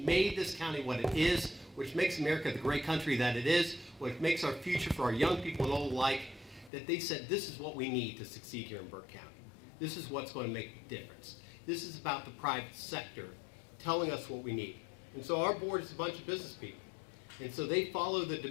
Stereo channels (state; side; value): drops out; right; at 6.7 s